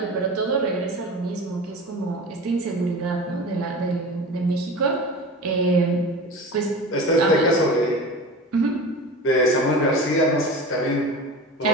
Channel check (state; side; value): normal; both; correlation 0.33